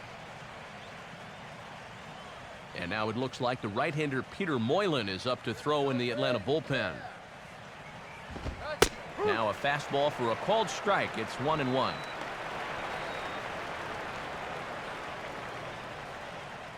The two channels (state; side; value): identical; both; correlation 1.00